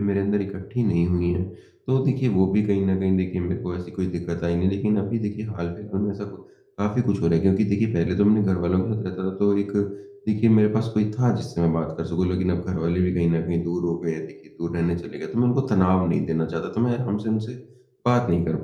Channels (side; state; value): both; identical; correlation 1.00